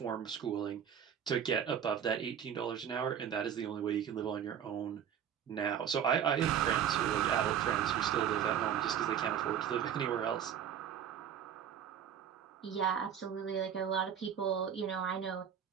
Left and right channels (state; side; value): quieter; left; 8.8 dB